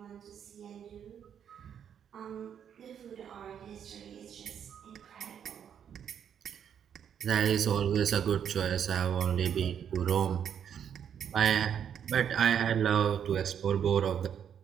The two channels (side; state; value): left; quieter; 8.5 dB